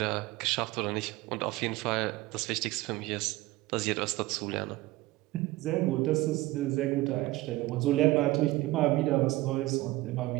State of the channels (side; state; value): left; quieter; 18.8 dB